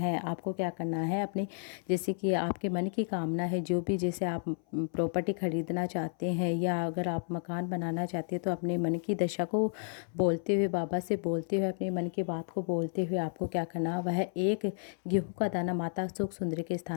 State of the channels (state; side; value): silent; right; 56 dB below the other